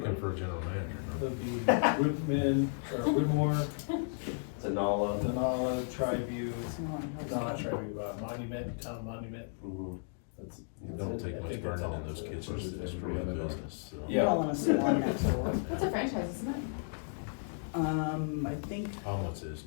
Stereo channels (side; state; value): right; silent; digital silence